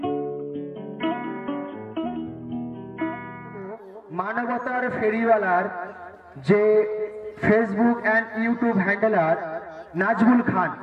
মানবতার ফেরিওয়ালার যে Facebook and YouTube handler Nazmul Khan,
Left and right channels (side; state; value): both; identical; correlation 1.00